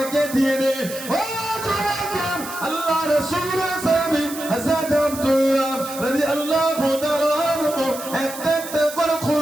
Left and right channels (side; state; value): right; noise; hiss, 11 dB below the sound